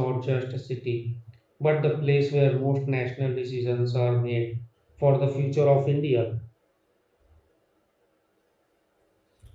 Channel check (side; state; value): both; identical; correlation 1.00